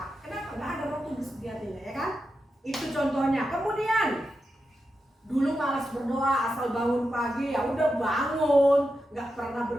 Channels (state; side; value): normal; both; correlation 0.88